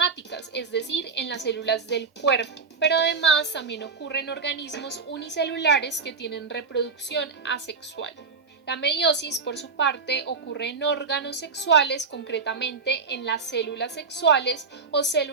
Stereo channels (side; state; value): left; quieter; 4.9 dB